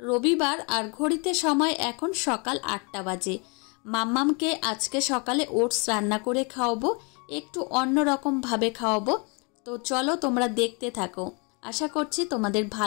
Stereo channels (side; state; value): right; quieter; 32.4 dB